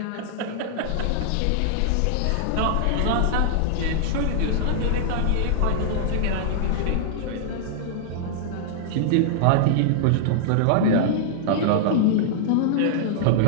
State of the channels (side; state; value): both; different; correlation -0.01